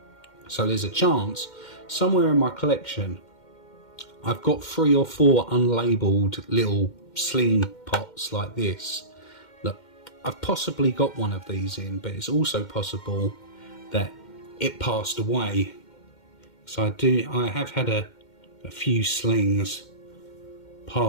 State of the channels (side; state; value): right; late; 2.1 ms